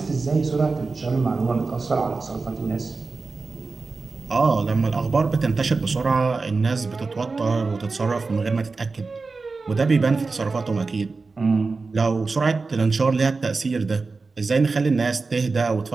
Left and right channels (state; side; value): quieter; left; 4.1 dB